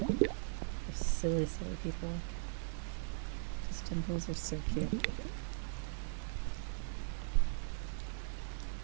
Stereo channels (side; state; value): left; silent; 51 dB below the other